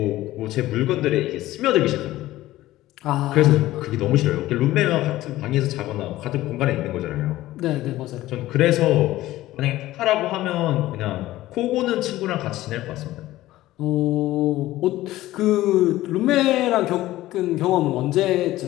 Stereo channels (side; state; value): right; quieter; 16.0 dB